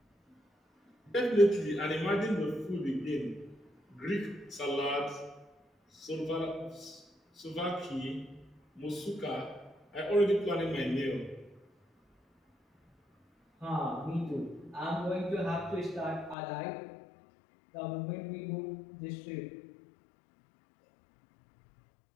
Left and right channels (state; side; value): drops out; right; at 16.4 s